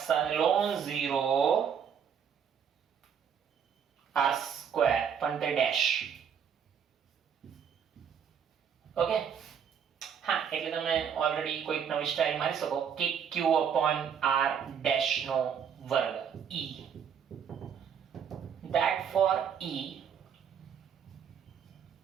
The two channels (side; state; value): left; quieter; 7.7 dB